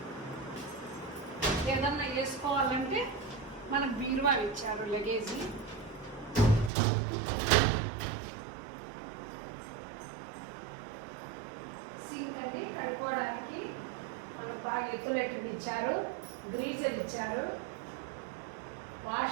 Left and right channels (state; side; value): drops out; left; at 6.7 s